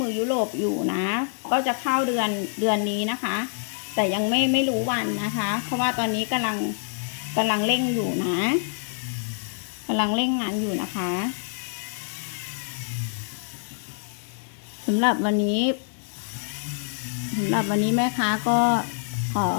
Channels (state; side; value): silent; right; 61 dB below the other